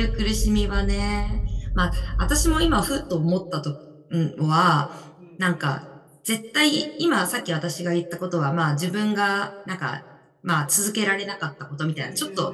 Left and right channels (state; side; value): identical; both; correlation 1.00